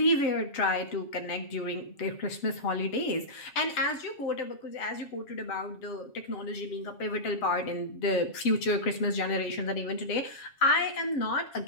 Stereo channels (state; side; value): late; right; 7.3 ms